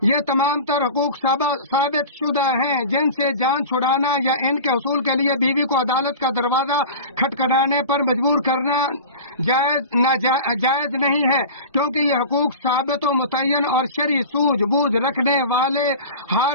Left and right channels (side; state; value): both; inverted; correlation -0.34